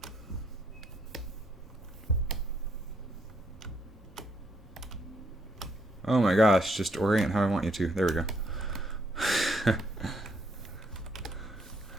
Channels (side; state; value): both; normal; correlation 0.72